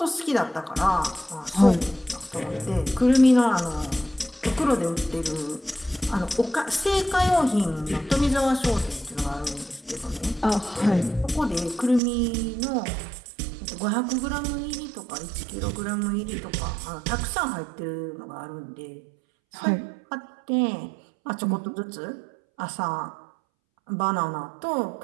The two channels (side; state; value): left; drops out; at 12.0 s